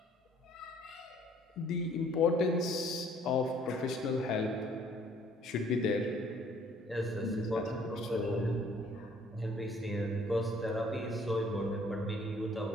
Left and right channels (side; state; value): both; normal; correlation 0.59